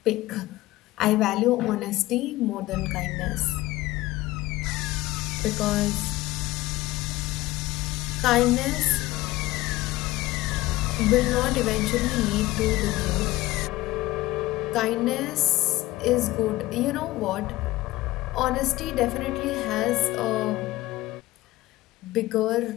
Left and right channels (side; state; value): right; quieter; 17.8 dB